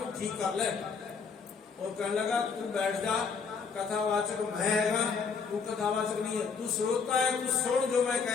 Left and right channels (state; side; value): quieter; right; 5.6 dB